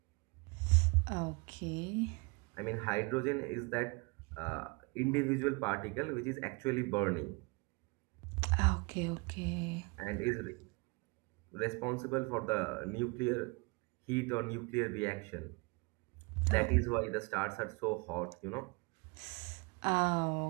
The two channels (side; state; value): left; quieter; 29.1 dB